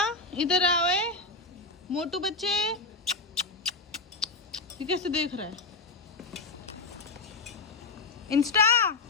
इधर आओ मोटू बच्चे। ये कैसे देख रहा है? इंस्टा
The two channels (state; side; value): quieter; right; 3.7 dB